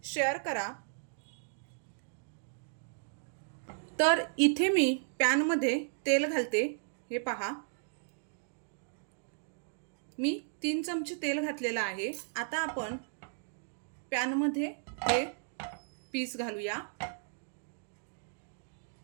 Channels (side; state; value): left; silent; digital silence